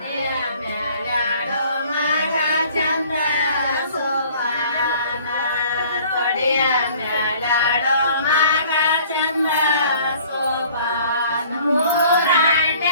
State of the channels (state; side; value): inverted; both; correlation -0.53